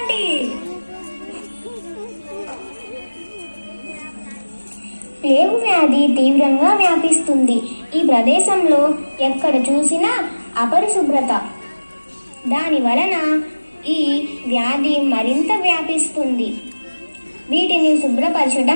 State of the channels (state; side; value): inverted; both; correlation -1.00